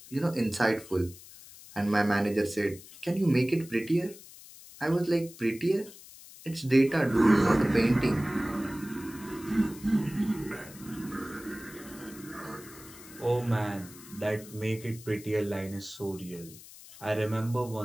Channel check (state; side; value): noise; left; hiss, 18 dB below the sound